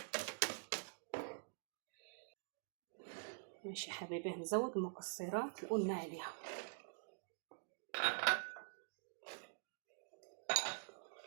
ماشي يا حبايبي، هنزود المكسرات اللي قلنا عليها.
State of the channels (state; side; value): silent; left; digital silence